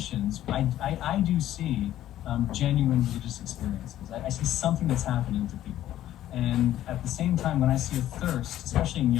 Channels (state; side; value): quieter; right; 12.9 dB